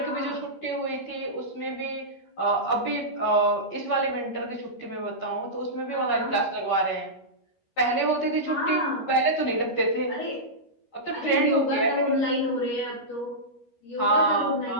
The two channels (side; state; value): right; late; 13 ms